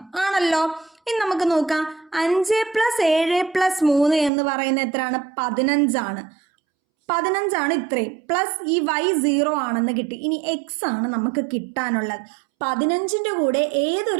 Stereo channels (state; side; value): drops out; left; at 4.3 s